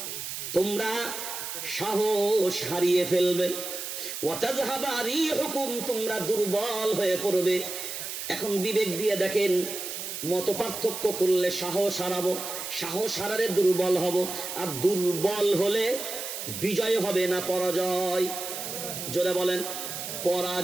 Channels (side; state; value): right; noise; hiss, 6 dB below the sound